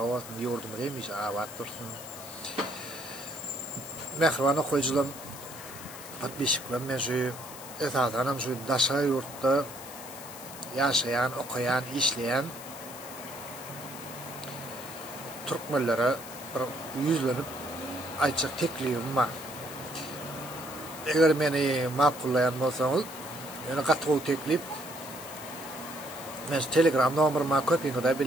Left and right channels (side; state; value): left; noise; hiss, 14 dB below the sound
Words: yurdumuz demiş abat dursun. Mehribanı koyuculan patbişiklen meşi esasen şu daşa yurtta yaşayan, okuyan, işleyen Türkmenlere bir yüzlenip ayçak teklifim var. Eğer beni makullayan bolsaňyz, ýöne gatgy teklip men Telegram nomerymyň köpüňi de